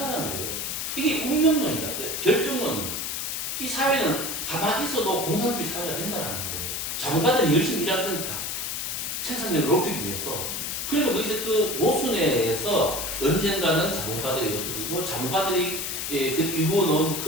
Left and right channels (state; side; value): noise; left; hiss, 3 dB below the sound